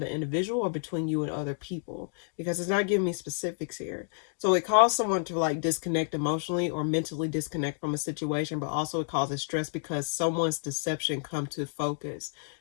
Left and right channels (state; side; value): silent; right; digital silence